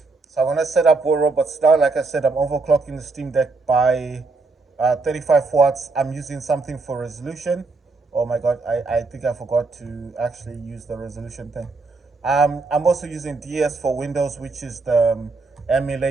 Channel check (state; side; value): quieter; left; 3.8 dB